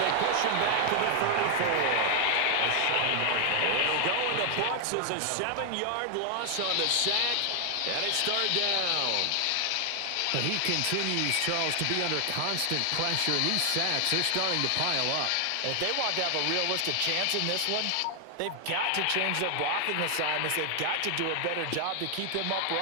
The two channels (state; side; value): different; both; correlation 0.00